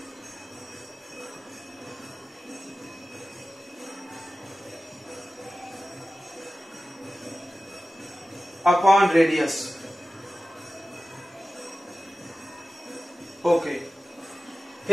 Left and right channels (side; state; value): both; normal; correlation 0.95